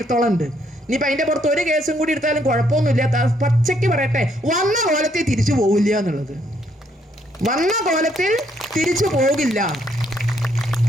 ഉണ്ട്. ഇനിയിപ്പൊ അതിന്റെ പുറത്ത് ഒരു കേസും കൂടി എടുത്താലും കുഴപ്പമൊന്നുമില്ല. പച്ചയ്ക്ക് പറയട്ടെ, വന്ന കോലത്തിൽ തിരിച്ചു പോകില്ല എന്നുള്ളത്. വന്ന കോലത്തിൽ തിരിച്ചു പോകില്ല,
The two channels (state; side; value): normal; both; correlation 0.71